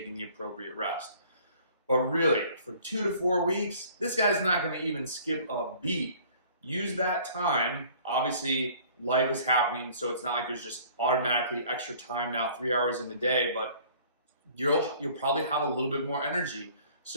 the appropriate rest. But really, for 2 to 4 weeks, this guy's not going to even skip a beat. Use that time. Obviously, life is happening, so it's not like there's just automatically extra time now, 3 hours in the day, but you'll probably have a little bit more energy.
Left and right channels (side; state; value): both; inverted; correlation -0.52